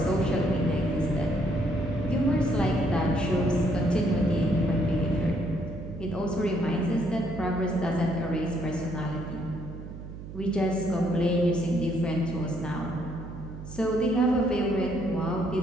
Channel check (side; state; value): right; noise; hum, 12 dB below the sound